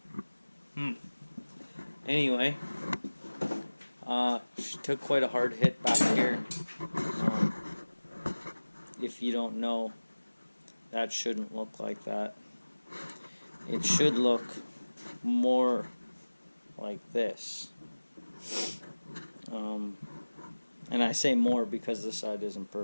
Anyway, she took quite a hard hit back here. If you don't know, that shouldn't look like that. It should look more like this. And I say more because this side isn't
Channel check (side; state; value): both; inverted; correlation -1.00